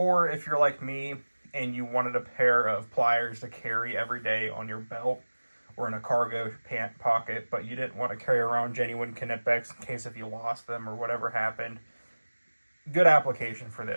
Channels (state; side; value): inverted; both; correlation -1.00